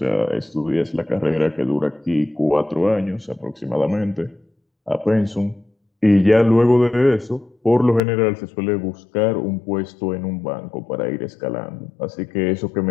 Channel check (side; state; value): right; drops out; at 8.0 s